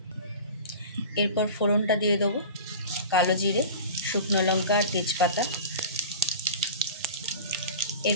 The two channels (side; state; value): both; inverted; correlation -0.35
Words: এরপর ফোড়নটা দিয়ে দেবো কালো জিরে, শুকনো লঙ্কা আর তেজপাতা।